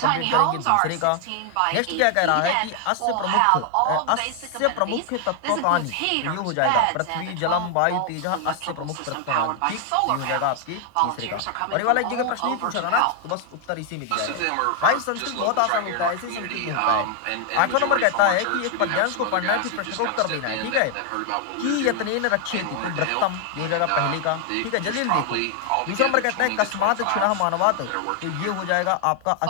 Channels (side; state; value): both; different; correlation 0.00